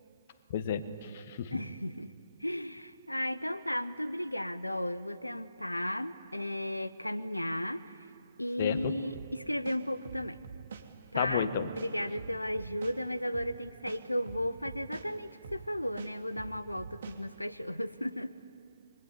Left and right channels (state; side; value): inverted; both; correlation -0.87